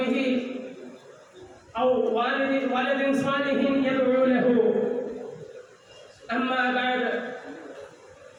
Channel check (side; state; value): both; identical; correlation 1.00